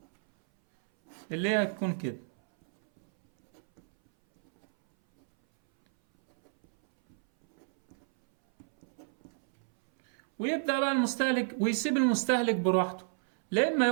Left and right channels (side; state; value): left; silent; 58 dB below the other